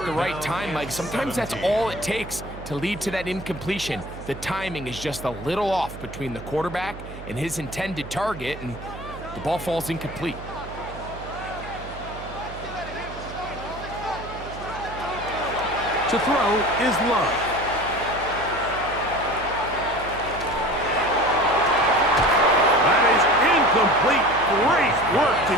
the right time, Mike, sometimes that's all it takes to lead to that incompletion. The timing is just a little off between the quarterback and his intended target, and the ball falls incomplete. To throw is Love. Complete. Great work to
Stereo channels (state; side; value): noise; right; hum, 13 dB below the sound